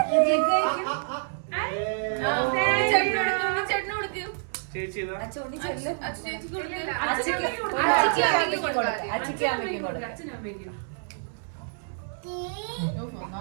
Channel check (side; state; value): left; silent; digital silence